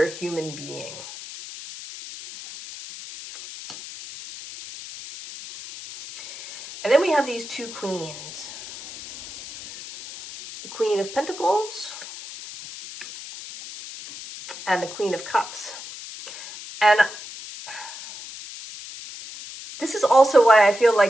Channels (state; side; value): noise; left; hiss, 13 dB below the sound